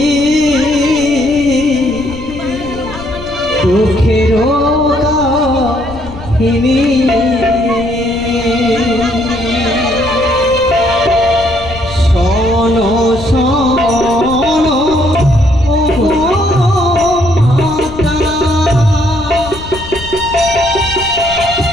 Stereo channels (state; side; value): noise; left; rumble, 14 dB below the sound